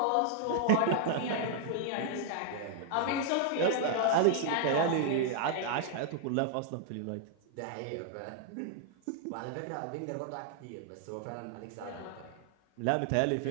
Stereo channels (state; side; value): different; both; correlation -0.01